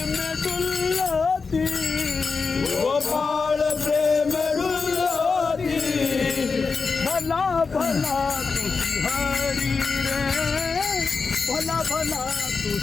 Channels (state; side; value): quieter; right; 4.7 dB